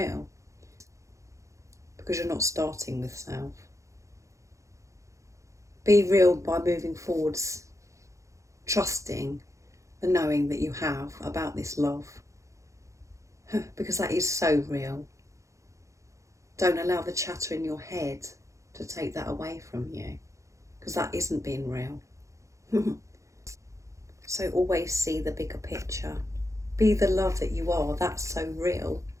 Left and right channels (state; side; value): late; left; 0.15 ms